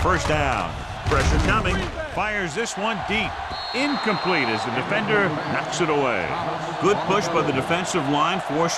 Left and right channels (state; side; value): identical; both; correlation 1.00